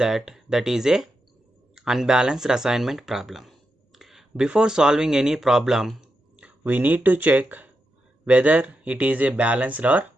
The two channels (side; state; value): both; normal; correlation 0.87